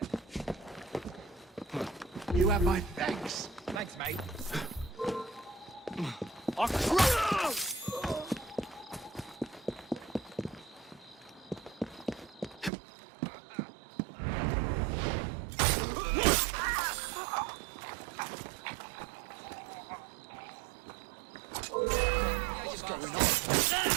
You have my thanks. Thanks, mate.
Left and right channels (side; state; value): left; drops out; at 12.7 s